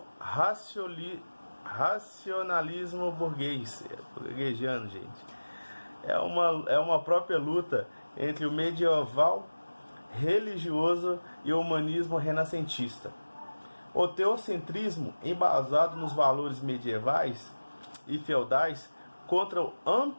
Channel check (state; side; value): inverted; both; correlation -1.00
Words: racionalismo burguesiano, gente. É uma própria luta entre o medieval religioso e o humanismo renascentista. O teocentrismo, embasado nos valores medievais e feudais, contra o